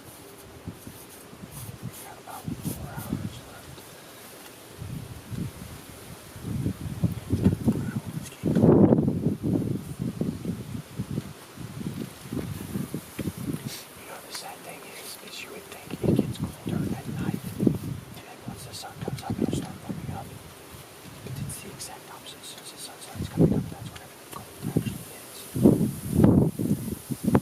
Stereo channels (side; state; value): both; identical; correlation 1.00